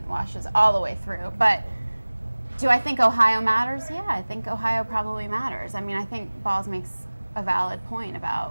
washes all the way through. But do I think Ohio matters? Yeah, I think Ohio probably matters. I mean, I think Balls makes a valid point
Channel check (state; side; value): inverted; both; correlation -1.00